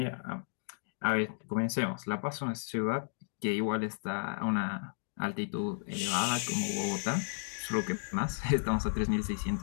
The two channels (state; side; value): silent; right; digital silence